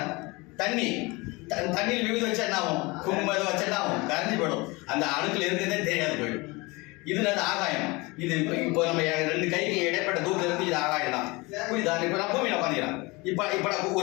தண்ணியில் விபூதி வச்சா என்ன ஆகும்? குங்குமம் ஏதோ வச்சா என்ன ஆகும்? கரைஞ்சி போயிடும், அந்த அணுக்கள் இருக்கிறதே தெரியாது போயிடும். இது அது ஆகாயம். இது இப்போ நம்ம ரெண்டு கைக்கு இடைப்பட்ட தூரத்தில் இருந்து இது ஆகாயம் தான். புரியுதா? இப்போ நான் பூமியில் உட்காந்துக்கிறேன். இப்போ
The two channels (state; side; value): quieter; right; 24.6 dB